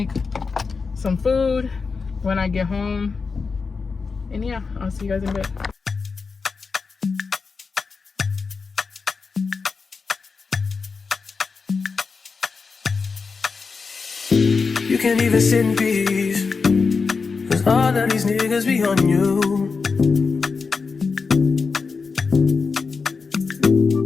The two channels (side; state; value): right; quieter; 4.8 dB